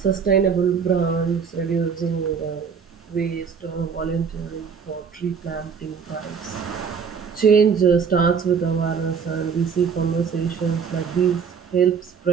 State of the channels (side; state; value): left; quieter; 6.4 dB